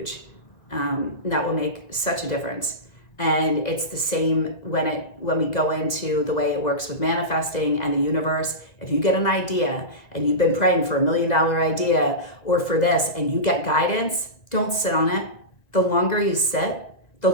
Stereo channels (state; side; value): late; right; 1.8 ms